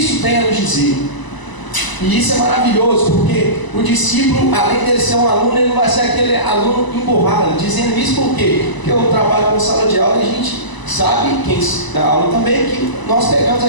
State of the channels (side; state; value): right; late; 1.0 ms